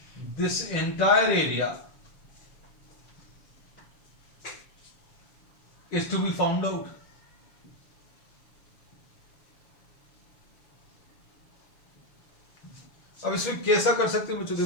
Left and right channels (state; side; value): late; right; 6.6 ms